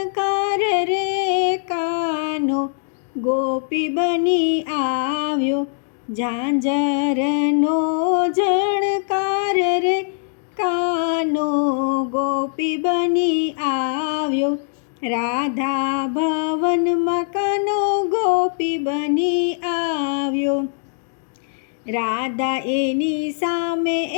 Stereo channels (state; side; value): silent; right; digital silence